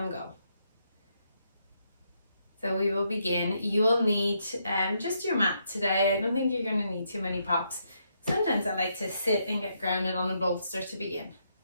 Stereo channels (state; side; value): inverted; both; correlation -0.77